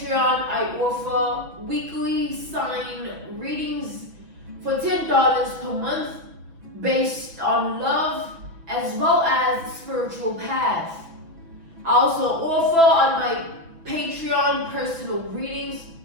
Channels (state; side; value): late; left; 6.2 ms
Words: I offer weekly sign readings for $10 per month based on love as well as spiritual path. I also offer on my Patreon personal readings.